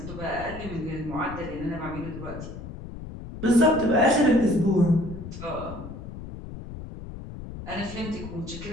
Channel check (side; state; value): left; noise; rumble, 11 dB below the sound